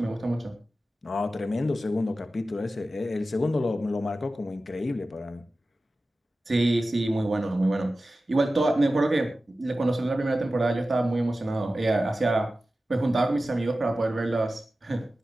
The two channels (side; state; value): both; normal; correlation 0.94